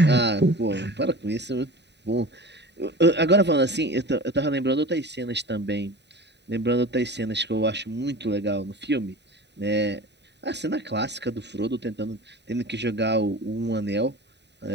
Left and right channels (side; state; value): left; late; 0.50 ms